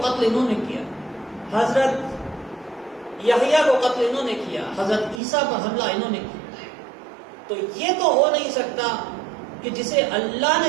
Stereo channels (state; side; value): drops out; left; at 5.2 s